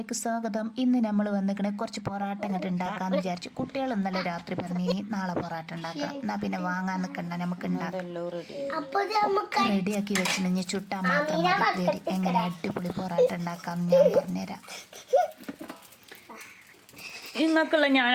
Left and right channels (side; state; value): both; identical; correlation 1.00